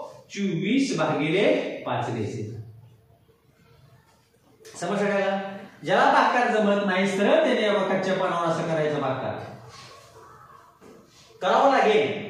24 भागिले 5 घ्यायचे समज सगळ्याला ज्याला भागाकार जमत नाही तर त्याने कच्च्या पानावर असं करायचं भागाकार करावं लागेल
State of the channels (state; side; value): identical; both; correlation 1.00